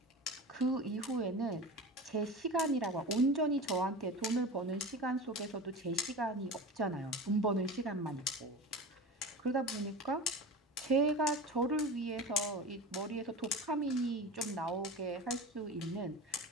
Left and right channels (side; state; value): both; normal; correlation 0.31